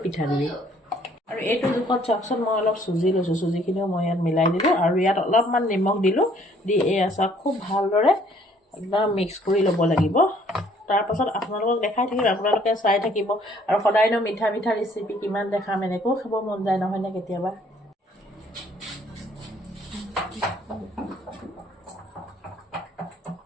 পিঠাগুড়ি আৰু এইটো জোখত চাওকচোন মই অলপ চুজি লৈছোঁ চুজিখিনিও মই ইয়াত মিলাই দিলোঁ আৰু ইয়াত অলপমান নিমখ দিলোঁ দি এই আচাৰ খুব ভালদৰে একদম মিক্স কৰি ল'ব লাগিব তাৰপাছত আপোনালোকক দেখাই থাকিম আপোনালোকে চাই থাকিব আৰু সদায়নো মিঠা মিঠা ৰেচিপি কিমান দেখাম এনেকৈও খাব মন যায় নহয়নে কেতিয়াবা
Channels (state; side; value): normal; both; correlation 0.61